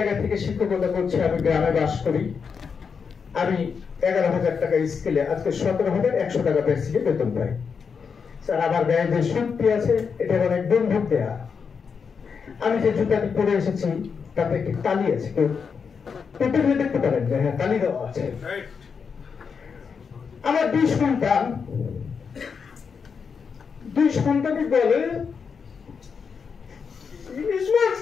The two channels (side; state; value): right; quieter; 6.0 dB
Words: থেকে শিক্ষকতা করছি, আমি গ্রামে বাস করি। আমি 11,000 টাকা স্কেলে আজকে 17,100 টাকা বেসিকে বেতন পাই। স্যার, আমার গায়ে যে সুটটি আছে এটা অনেক বন্ধুক দেয়া। আমি যে জুতাটি পরে এসেছি তাতে একটি তালি আছে, কেউ পেটে দেখতে পারেন যে হ্যাঁ তালি দেওয়া আছে। আমার 2 সন্তান, 2 সন্তানই বলে